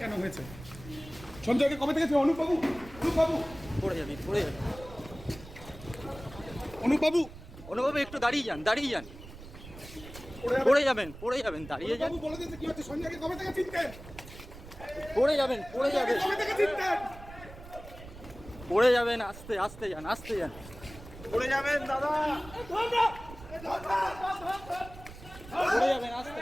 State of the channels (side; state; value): right; noise; rumble, 16 dB below the sound